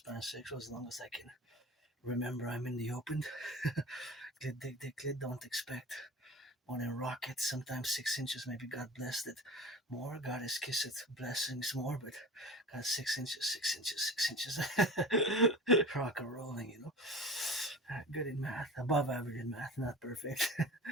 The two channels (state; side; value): normal; both; correlation 0.35